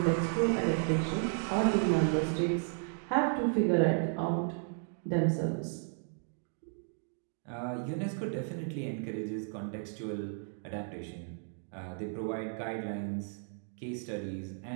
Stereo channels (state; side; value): silent; left; 55 dB below the other